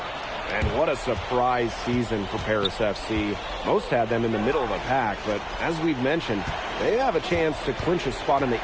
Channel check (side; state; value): both; identical; correlation 1.00